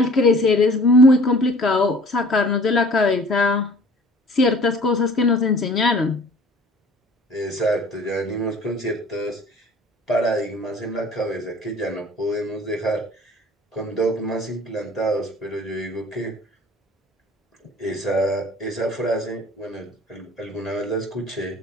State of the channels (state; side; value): normal; both; correlation 0.48